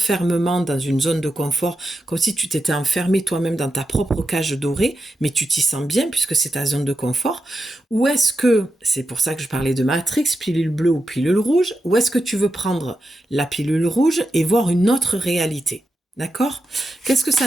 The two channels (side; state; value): both; normal; correlation 0.88